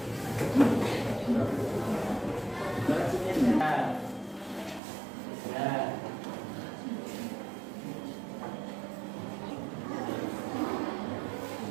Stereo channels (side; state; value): left; drops out; at 4.8 s